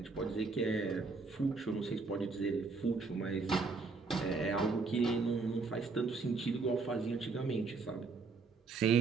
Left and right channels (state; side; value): quieter; left; 4.2 dB